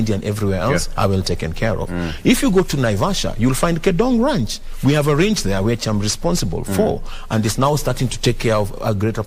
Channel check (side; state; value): both; identical; correlation 1.00